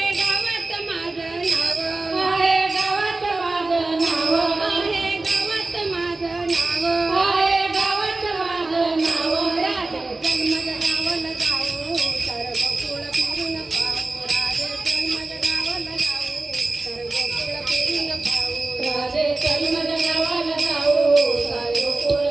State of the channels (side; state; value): left; quieter; 3.2 dB